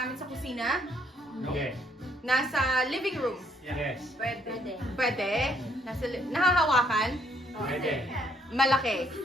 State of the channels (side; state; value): both; normal; correlation 0.68